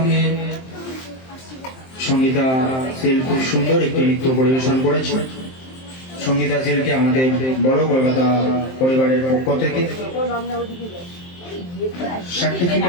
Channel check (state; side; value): late; right; 23 ms